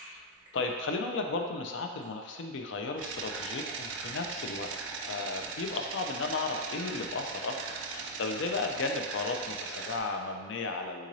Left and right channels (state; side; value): normal; both; correlation -0.08